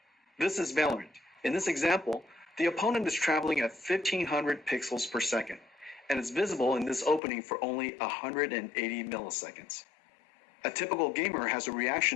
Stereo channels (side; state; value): right; drops out; at 7.2 s